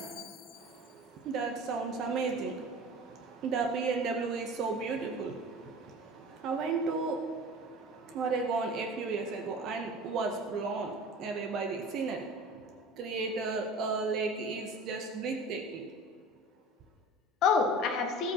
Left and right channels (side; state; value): both; normal; correlation 0.38